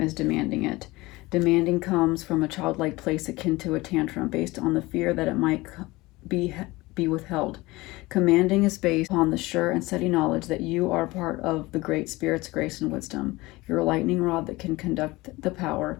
as demanding it. Demanding comes from a childlike place akin to a tantrum based on the fear that it might be withheld. Commanding is based on the sure and steady knowledge that you are part of the Great Spirit's grace and wisdom. You're a lightning rod that can conduct the power.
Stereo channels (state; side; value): quieter; right; 21.0 dB